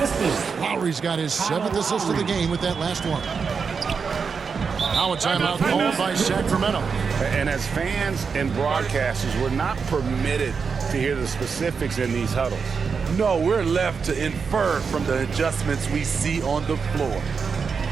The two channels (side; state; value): left; quieter; 5.6 dB